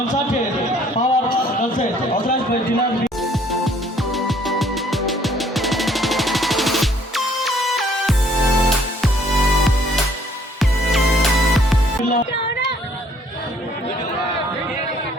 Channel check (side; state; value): both; normal; correlation 0.62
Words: পাওয়ার কনসার্ট অথরাইজড বাই ডিলার